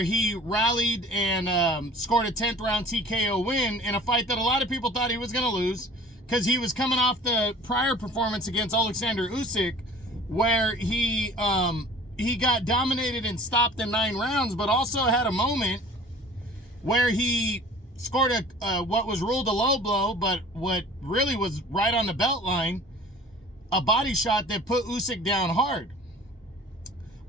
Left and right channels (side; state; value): both; normal; correlation 0.46